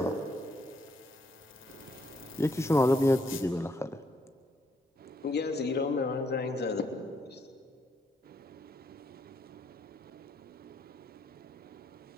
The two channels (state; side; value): normal; both; correlation 0.75